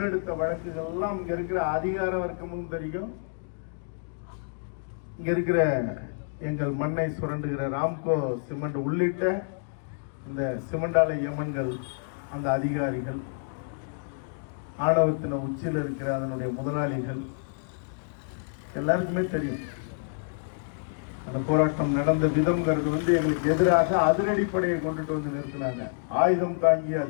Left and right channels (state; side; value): silent; right; digital silence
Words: வழக்குகள் எல்லாம் இங்க இருக்கிற அதிகார வர்க்கமும் தெரியும், இங்க இருக்கிற எங்கள் மண்ணை சுரண்டுகிற ராம்கோ சிமெண்ட் உள்ளிட்ட இந்த சிமெண்ட் ஆலை யமன்கள், அந்த அதிகாரிகள், ஆணவத்தின உச்சியில் இருக்கிற அதனுடைய முதலாளிகள் எல்லாருக்குமே தெரியும். அந்த போராட்டம் நடந்த விதம்ங்கிறது எங்களுக்கு எதிராக அதிரடிப்படையை கொண்டுட்டு வந்து நிறுத்தினாங்க. ஆயுதம் தாங்கிய